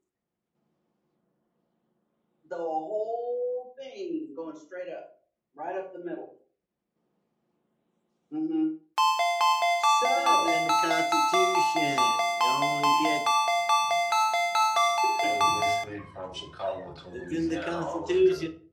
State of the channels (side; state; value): both; identical; correlation 1.00